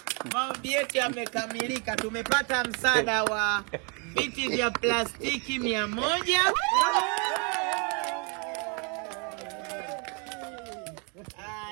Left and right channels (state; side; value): quieter; left; 34.9 dB